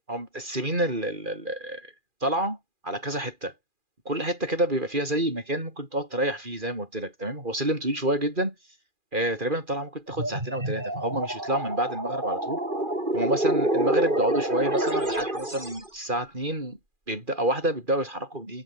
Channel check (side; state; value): left; late; 2.4 ms